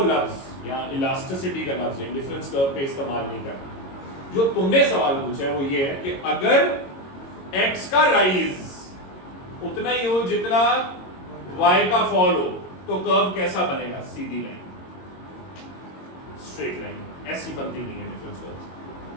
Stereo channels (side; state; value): right; late; 22 ms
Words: या इलास्टिसिटी का लफ्ज इंडिफरेंस कर्व पे इस्तेमाल नहीं करना। जो तुमने सवाल पूछा है वो ये है कि अगर x का राइज उतना ही हो जितना y का फॉल हो तो कर्व कैसा बनेगा? सीधी लाइन, स्ट्रेट लाइन। ऐसी बनती नहीं है इंडिफरेंस कर्व।